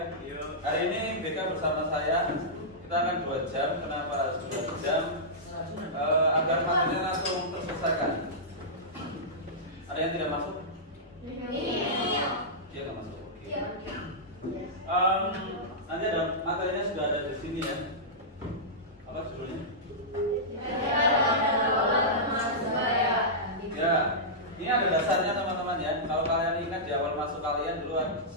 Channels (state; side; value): normal; both; correlation -0.13